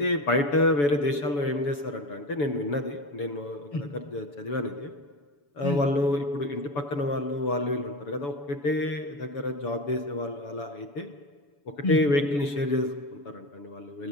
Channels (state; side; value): late; right; 7.0 ms